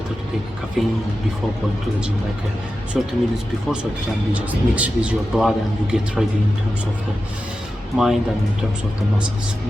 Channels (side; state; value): both; normal; correlation 0.92